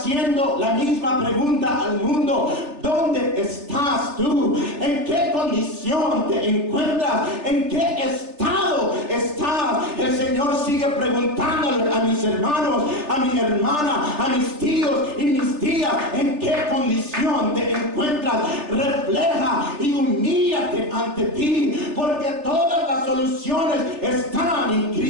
la misma pregunta al mundo: ¿dónde estás tú? ¿En qué condición te encuentras? ¿En qué estado estás? El Señor sigue preguntándole a mis hermanos, a mi hermana, a mis tíos y mis tías: ¿en qué condición te encuentras? Refleja y humíllate ante ti, porque todas las soluciones están en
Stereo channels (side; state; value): left; late; 3.3 ms